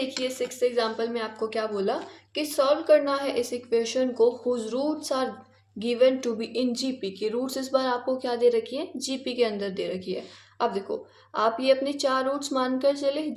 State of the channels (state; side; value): identical; both; correlation 1.00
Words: 6th एग्जाम्पल में आपको क्या बोला कि सॉल्व करना है इस इक्वेशन को whose roots are given to be in GP, की रूट्स इस बार आपको क्या दे रखी है, जीपी के अंदर दे रखी है। अब देखो आप ये अपने 4 रूट्स मानकर चले,